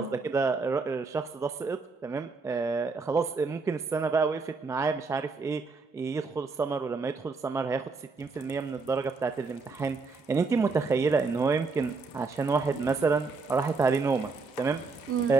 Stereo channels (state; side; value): quieter; left; 4.2 dB